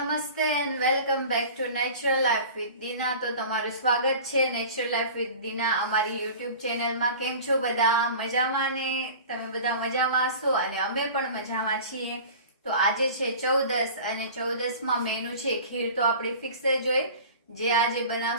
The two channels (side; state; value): both; inverted; correlation -0.39